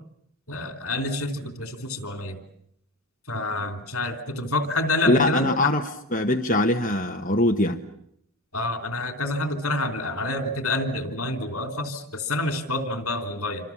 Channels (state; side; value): normal; both; correlation 0.28